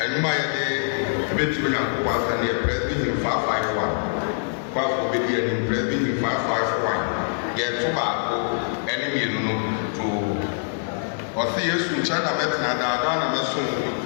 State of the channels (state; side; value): silent; right; digital silence